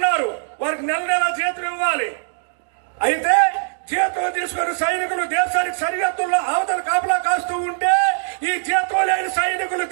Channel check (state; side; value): silent; left; digital silence